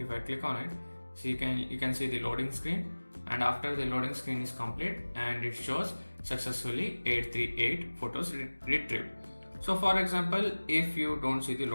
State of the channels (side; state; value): both; inverted; correlation -1.00